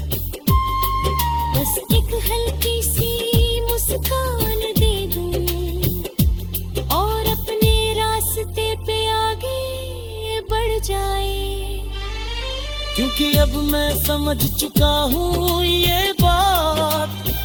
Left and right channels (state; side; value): identical; both; correlation 1.00